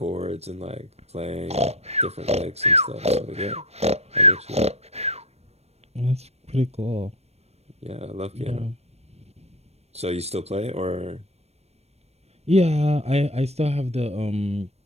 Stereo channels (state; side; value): late; left; 0.31 ms